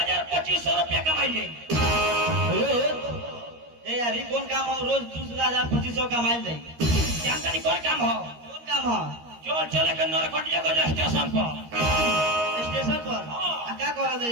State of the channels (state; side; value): late; left; 13 ms